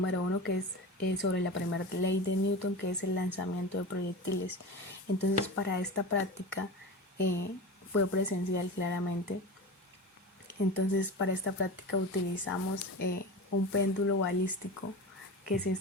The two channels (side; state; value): both; normal; correlation 0.29